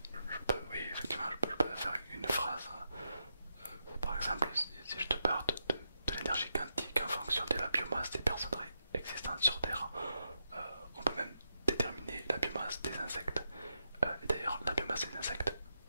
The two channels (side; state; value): both; inverted; correlation -0.84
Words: Je peux, oui, effectivement, je peux faire une phrase. Par exemple, si je te parle de l'énergie quantique en fonction de la biomasse des personnes existantes sur Terre, on peut même déterminer la biomasse des insectes. Et d'ailleurs, la biomasse des insectes,